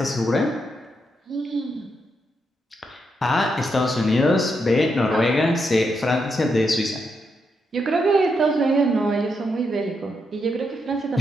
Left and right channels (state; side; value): normal; both; correlation 0.81